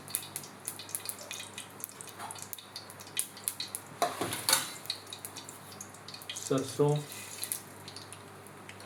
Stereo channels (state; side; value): identical; both; correlation 1.00